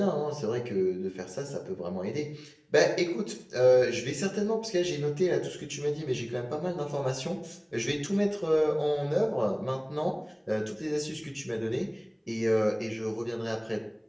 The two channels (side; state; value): both; identical; correlation 1.00